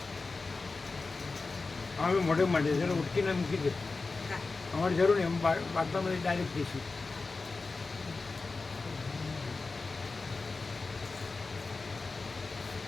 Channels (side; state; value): right; quieter; 3.9 dB